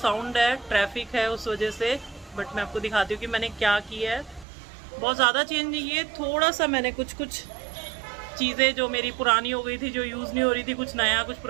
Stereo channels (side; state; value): left; drops out; at 4.5 s